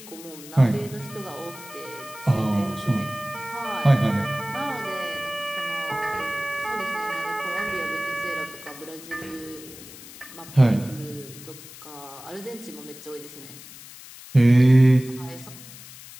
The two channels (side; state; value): left; noise; hiss, 16 dB below the sound